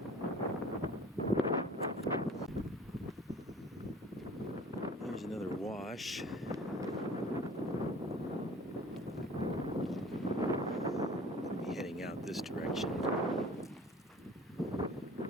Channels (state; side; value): normal; both; correlation 0.46